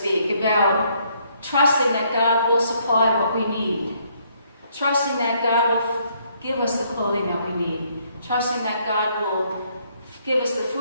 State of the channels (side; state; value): both; inverted; correlation -0.69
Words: about trusting that God will supply what we need, trusting that God will give us the clothing that we need, trusting that God will give us the